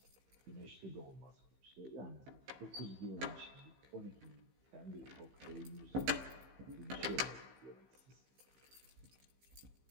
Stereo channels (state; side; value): late; left; 15 ms